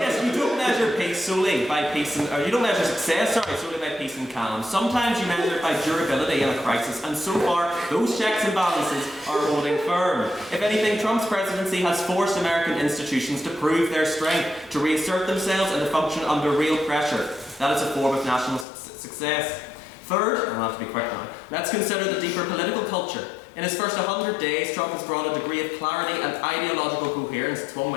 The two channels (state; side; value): drops out; right; at 18.7 s